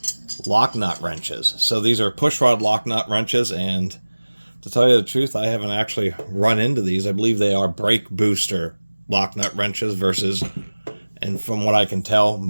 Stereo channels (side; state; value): both; inverted; correlation -1.00